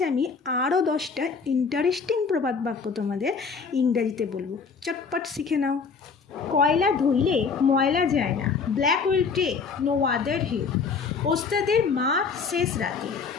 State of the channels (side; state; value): right; quieter; 5.3 dB